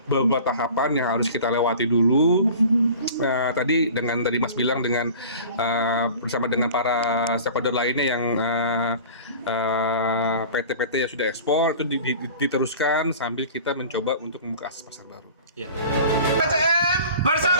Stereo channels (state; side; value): inverted; both; correlation -0.42